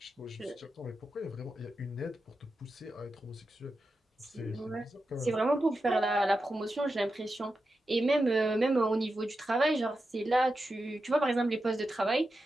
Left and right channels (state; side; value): normal; both; correlation 0.90